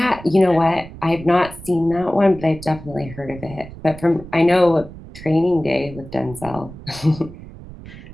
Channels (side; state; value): right; noise; rumble, 16 dB below the sound